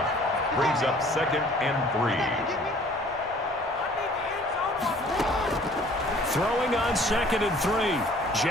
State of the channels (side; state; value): both; normal; correlation 0.53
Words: brings up 2nd and 3. Throwing on 2nd and 3,